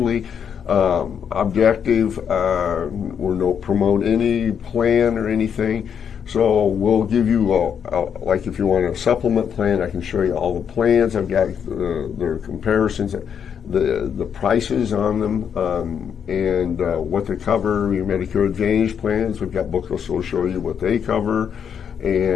objective. We don't promote any plan or anything. So we'll give you, like if you want a supplement plan, I can show you all the plans. I've got their comparisons. the prices on them, and what they cover. Your Medicare Advantage plans, we've got booklets that'll show you what they cover,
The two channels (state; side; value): quieter; right; 7.7 dB